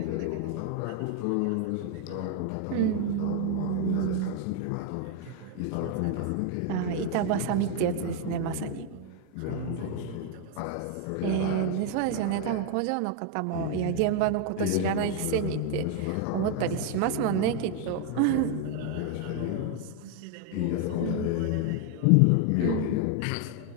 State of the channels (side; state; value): both; different; correlation 0.01